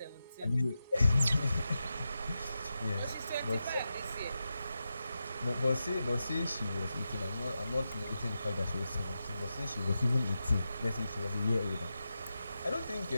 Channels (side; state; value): both; inverted; correlation -0.90